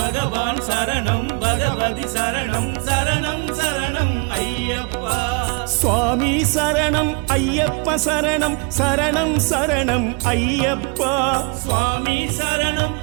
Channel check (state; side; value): quieter; left; 32.7 dB